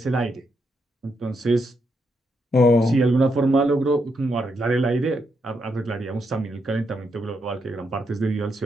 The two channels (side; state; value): both; normal; correlation 0.80